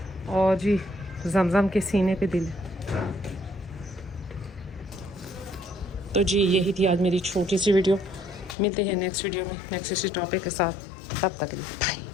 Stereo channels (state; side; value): drops out; right; at 8.6 s